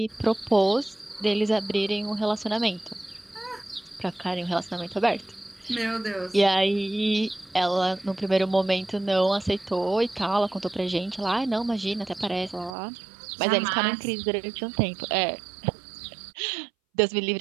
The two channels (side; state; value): left; drops out; at 12.8 s